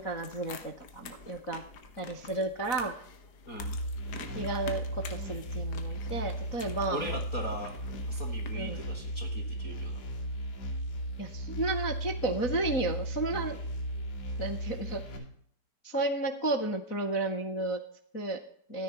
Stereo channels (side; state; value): right; late; 4.0 ms